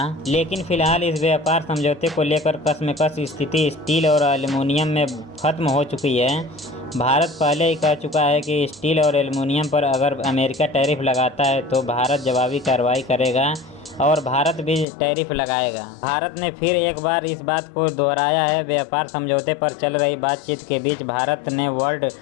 लेकिन फिलहाल इस व्यापार समझौते को लेकर कशमकश स्थिति स्टील और एल्युमिनियम में खत्म हो चुकी है। भारत पहले ही कह चुका है कि स्टील और एल्युमिनियम पर अगर अमेरिका टैरिफ लगाता है तो भारत जवाबी कार्रवाई करेगा और भारत भी टैरिफ लगाएगा। भारत ने फिर एक बार इस बात को दोहराया है। व्यापार समझौते पर चल रही बातचीत के बीच भारत ने वर्ल्ड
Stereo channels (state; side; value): drops out; right; at 14.9 s